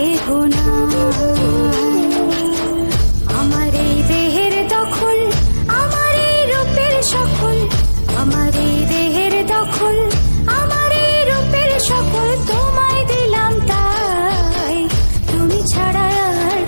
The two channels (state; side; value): inverted; both; correlation -1.00